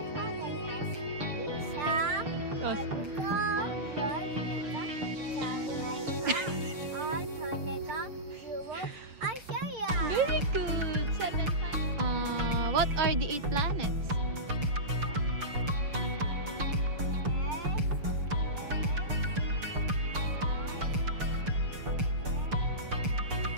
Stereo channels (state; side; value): late; left; 6.7 ms